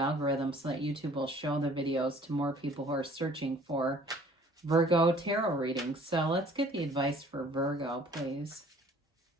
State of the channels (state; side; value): normal; both; correlation 0.54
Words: so that YouTube will show the videos to more people who are searching for Virgo tarot readings. So let's get the advice for Virgo, please.